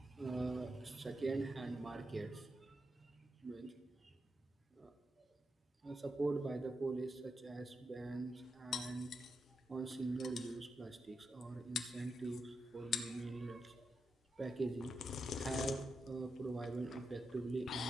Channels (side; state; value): both; normal; correlation 0.85